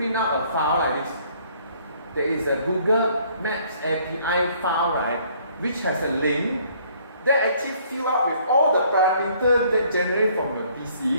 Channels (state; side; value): inverted; both; correlation -0.61